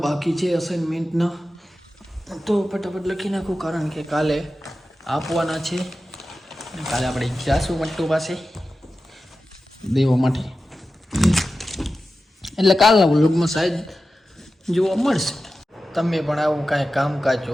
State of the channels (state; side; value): normal; both; correlation 0.93